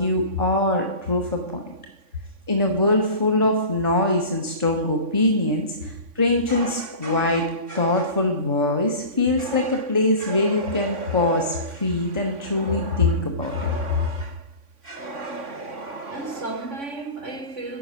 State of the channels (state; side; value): late; left; 3.5 ms